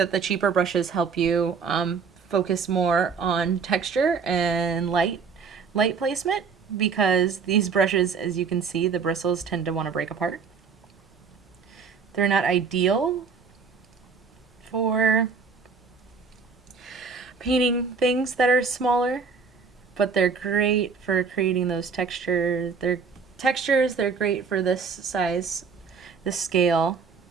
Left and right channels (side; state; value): left; quieter; 5.5 dB